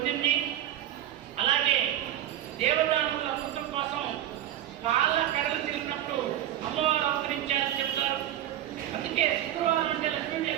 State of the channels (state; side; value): quieter; left; 12.2 dB